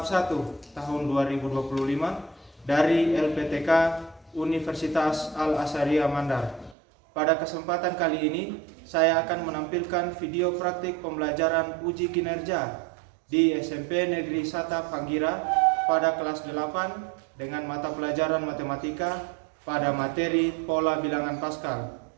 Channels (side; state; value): left; drops out; at 6.8 s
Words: 1 tahun 2025 dari LPTK Universitas Al-Azhariyah Mandar. Pada kesempatan kali ini, saya akan menampilkan video praktik pembelajaran uji kinerja di SMP Negeri Sata Panggira pada kelas 8 dengan mata pelajaran matematika pada materi pola bilangan Pascal.